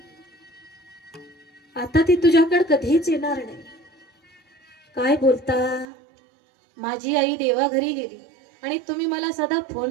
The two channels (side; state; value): left; drops out; at 5.9 s